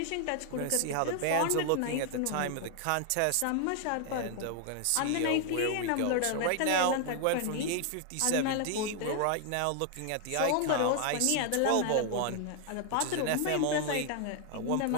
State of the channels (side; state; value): both; different; correlation 0.00